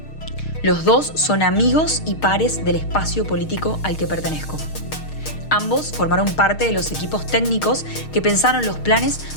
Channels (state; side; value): late; right; 6.5 ms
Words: Los dos son amigos y pares del espacio político al que pertenezco. Ambos formaron parte de los equipos técnicos que pensaron los planes